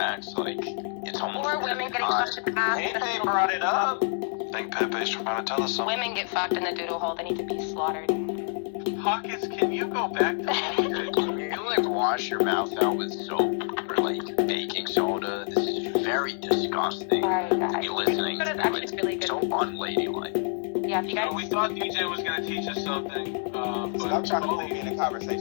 Like, it's almost. Or women getting fucked in the ass. They brought it up. I think Pepe's trying to tell us something. Women get fucked in the doodle hole. They need to be slaughtered. Pockets, can you go back to You wash your mouth out with soap or baking soda. This is very disgusting to be listening to. It's really so unladylike. Yeah, if you guys. We thought DJ was going to teach us something, but I'm trying to lead the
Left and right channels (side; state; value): right; silent; digital silence